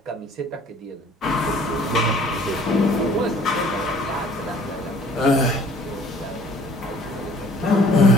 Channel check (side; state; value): both; normal; correlation 0.54